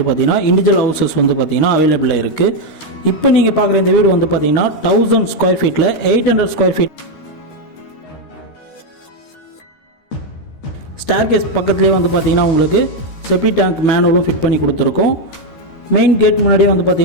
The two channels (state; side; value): late; right; 13 ms